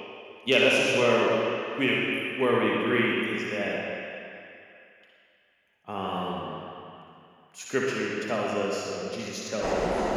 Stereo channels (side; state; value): both; identical; correlation 1.00